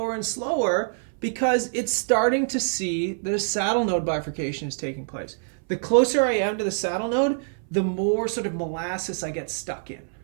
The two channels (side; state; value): left; silent; 61 dB below the other